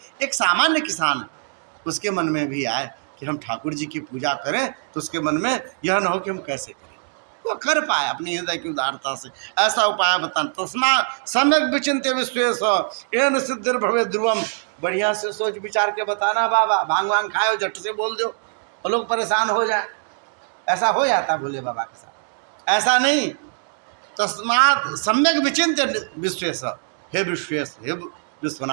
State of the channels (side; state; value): left; silent; digital silence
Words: एक सामान्य किसान उसके मन में भी आए कि हम ठाकुर जी की पूजा करें, तो उसके मन में यह न हो कि हम कैसे करें, वो कर पाए अपनी हृदय की उदारता से। ऐसा उपाय बताना। तस्मा सम्यक विचिन्त्य विश्वेश एन सिद्धिर्भवेत् ध्रुवम, बढ़िया से सोच विचार के बताना बाबा, भांग वांग खाओ झट से बोल दो और लोग परेशान हो जाए। ऐसा हो जाता भोले बाबा के साथ, ऐसा नहीं। तस्मात् सम्यक विचिन्त्य विश्वेश, हे विश्वेश, हे